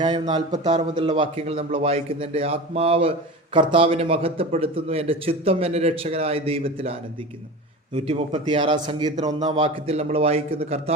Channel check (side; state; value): both; normal; correlation 0.30